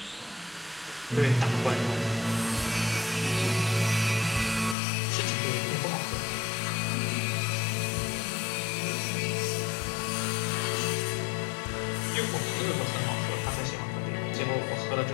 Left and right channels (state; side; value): drops out; right; at 4.8 s